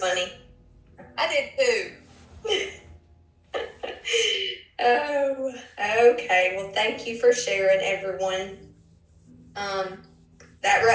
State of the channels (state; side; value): identical; both; correlation 1.00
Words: I did too. Oh, okay. Well, thank you for sharing, everyone. That